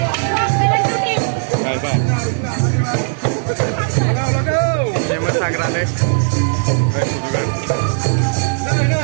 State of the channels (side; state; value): left; silent; 61 dB below the other